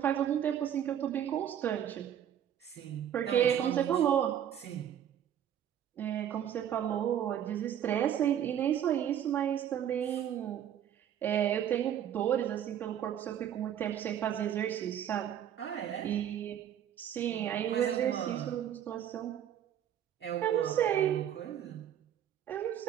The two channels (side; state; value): left; quieter; 10.0 dB